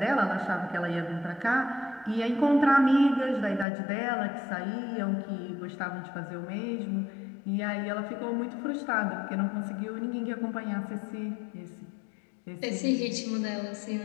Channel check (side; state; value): right; drops out; at 3.7 s